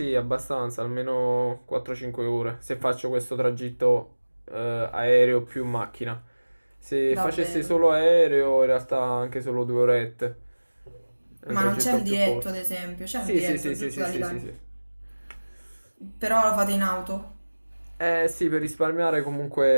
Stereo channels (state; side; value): inverted; both; correlation -1.00